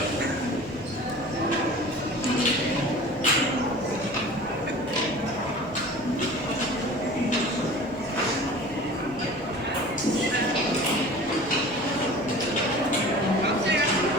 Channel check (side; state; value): both; normal; correlation 0.40